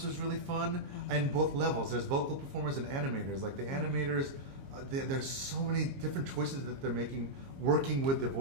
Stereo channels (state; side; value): late; left; 22 ms